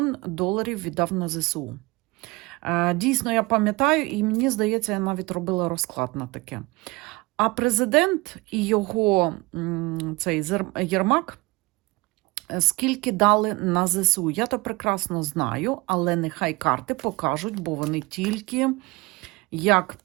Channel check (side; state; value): left; quieter; 23.4 dB